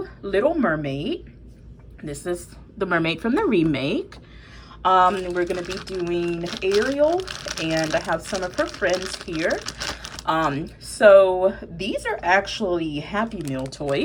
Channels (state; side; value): identical; both; correlation 1.00